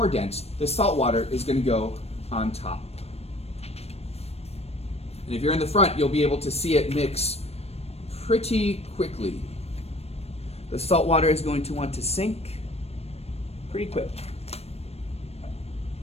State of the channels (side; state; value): right; late; 0.30 ms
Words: dense, the salt water, is going to go on top. And if you're in the front, you'll be able to see it mix pretty quickly. The salt water is going to want to sink pretty quick.